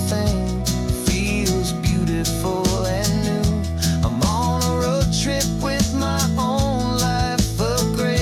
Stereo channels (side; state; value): both; identical; correlation 1.00